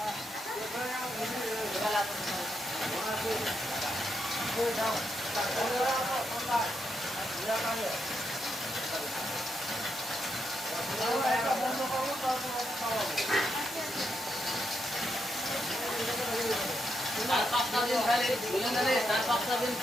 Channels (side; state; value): both; normal; correlation 0.82